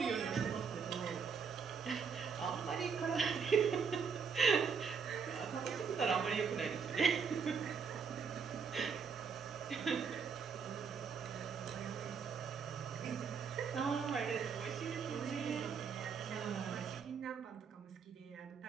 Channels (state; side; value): quieter; left; 6.0 dB